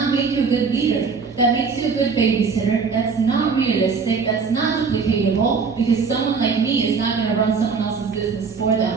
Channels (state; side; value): quieter; left; 5.2 dB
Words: make you a good leader. That makes you a good babysitter. That's not realistic. That's not duplicatable because someone like me is not going to run someone else's business for